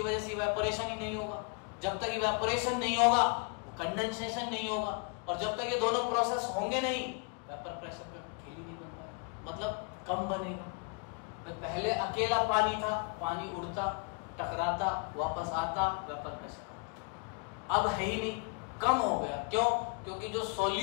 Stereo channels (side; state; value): right; quieter; 36.8 dB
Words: वजह से इवेपोरेशन ही नहीं होगा। जब तक इवेपोरेशन नहीं होगा कंडेंसेशन नहीं होगा, और जब तक ये दोनों प्रोसेस होंगे नहीं वेपर प्रेशर का खेल ही नहीं बन पाएगा, मतलब कम बनेगा। पहले अकेला पानी था, पानी उड़ता, टकराता, वापस आता, वेपर प्रेशर अब है ही नहीं, कम हो गया। क्यों? क्योंकि जो